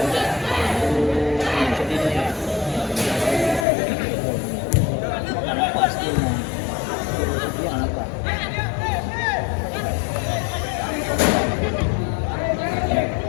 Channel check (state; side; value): drops out; right; at 3.7 s